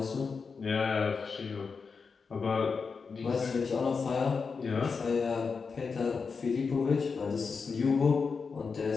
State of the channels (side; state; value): right; quieter; 5.2 dB